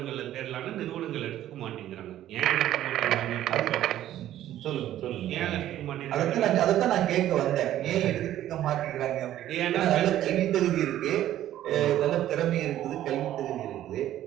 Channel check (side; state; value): left; quieter; 12.7 dB